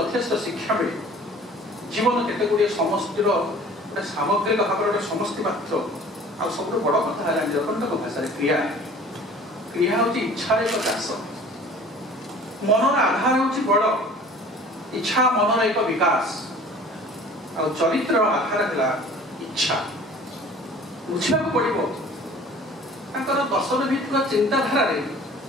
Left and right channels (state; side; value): normal; both; correlation 0.47